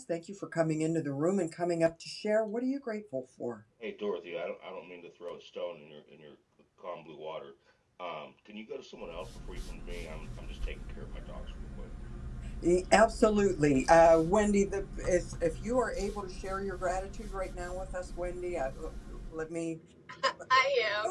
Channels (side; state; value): both; identical; correlation 1.00